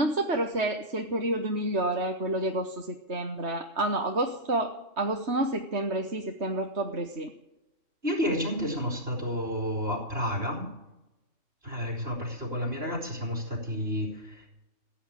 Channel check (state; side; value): late; left; 2.9 ms